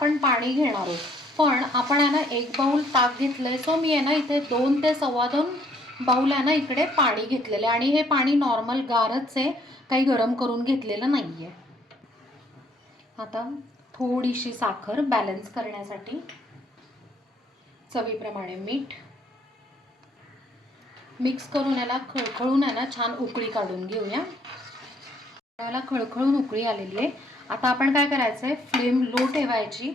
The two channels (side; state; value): both; normal; correlation 0.65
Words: पाणी घेणार आहोत. पण आपण आहे ना 1 बाउल ताक घेतलंय, सो मी आहे ना इथे 2 ते 2.25 बाउल आहे ना इकडे पाणी घेतलेलं आहे आणि हे पाणी नॉर्मल गारच आहे, काही गरम करून घेतलेलं नाही आहे. आता थोडीशी साखर बॅलन्स करण्यासाठी, चवीप्रमाणे मीठ, मिक्स करून याला खळखळून आहे ना छान उकळी काढून घेऊया. याला खळखळून उकळी आलेली आहे. आता आपण काय करायचं आहे, फ्लेम लो ठेवायची